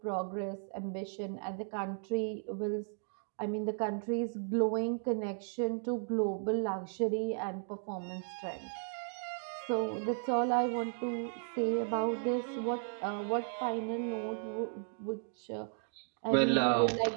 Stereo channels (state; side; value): silent; left; digital silence